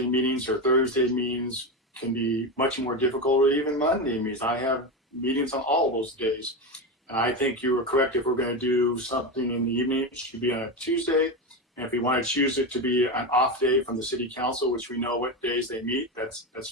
meetings or Thursday meetings can be much more difficult, or even Monday meetings. I have meetings on all those days. And I think you were correct. If we're going to do something in the evening, it should be on a Tuesday. And if we want to choose it to be an off day from the city council, which we know what days they meet,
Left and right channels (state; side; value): normal; both; correlation 0.16